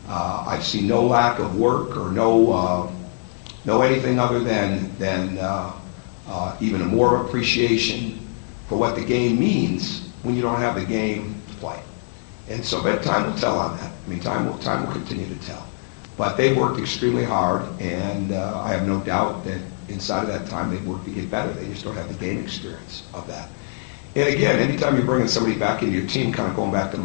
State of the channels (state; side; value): silent; right; 64 dB below the other